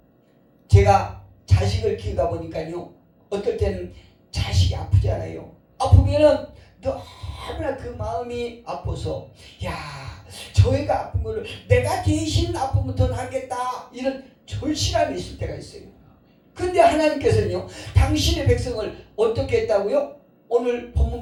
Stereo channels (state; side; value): identical; both; correlation 1.00